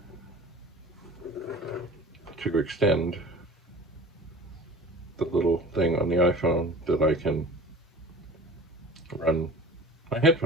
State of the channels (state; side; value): normal; both; correlation 0.40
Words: to extend the little thing on the iPhone that I can run my